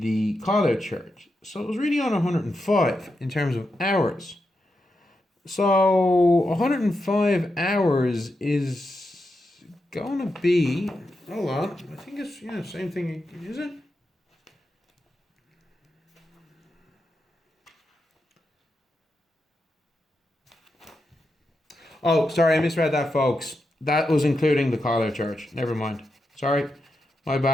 call out charge. So it was really on 105 in terms of hours. So 105 hours is going to be, hold on, I think it's, yeah, same thing, is it? Oh, sorry, I misread that, folks. That was including the call out charge. Never mind. Sorry. My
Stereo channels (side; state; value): both; normal; correlation 0.87